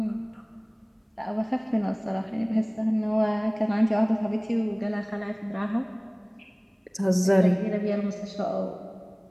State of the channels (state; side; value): identical; both; correlation 1.00